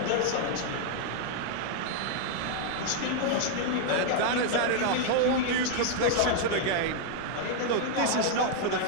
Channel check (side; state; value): both; different; correlation 0.00